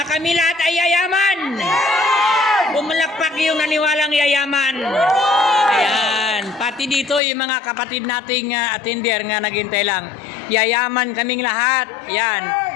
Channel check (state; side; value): drops out; right; at 7.2 s